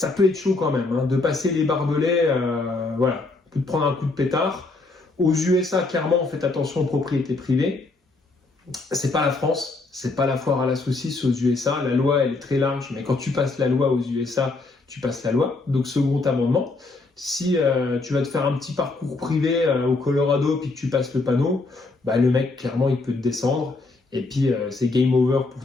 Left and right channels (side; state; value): right; quieter; 3.5 dB